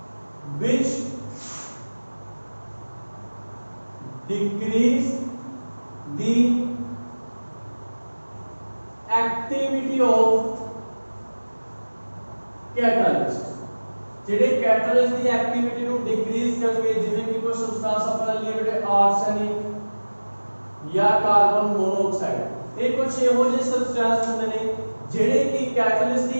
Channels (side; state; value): both; inverted; correlation -1.00